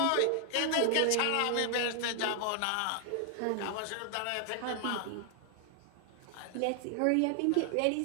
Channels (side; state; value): both; different; correlation 0.00